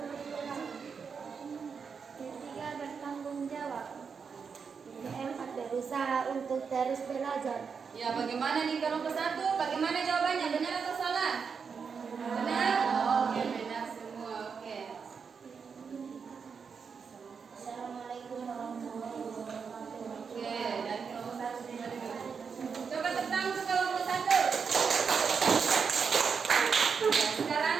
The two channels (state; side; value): quieter; left; 5.9 dB